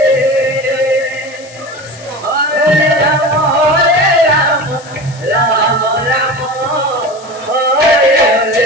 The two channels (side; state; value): left; noise; hiss, 21 dB below the sound